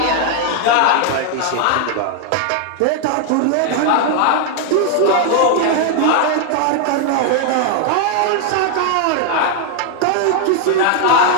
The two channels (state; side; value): different; both; correlation 0.00